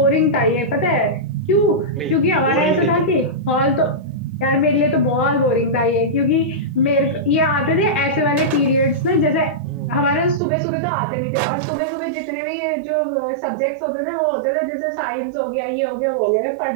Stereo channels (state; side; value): drops out; left; at 10.4 s